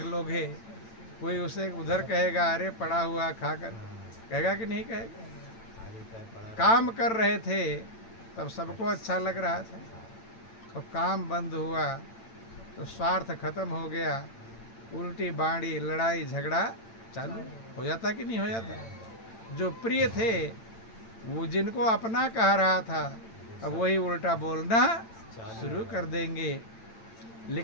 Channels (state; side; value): late; right; 8.9 ms